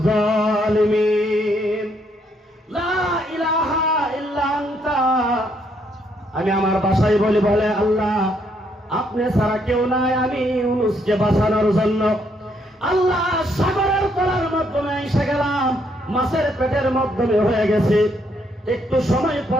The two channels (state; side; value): normal; both; correlation 0.72